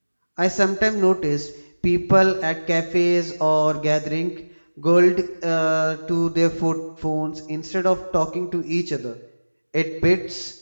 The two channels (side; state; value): both; inverted; correlation -1.00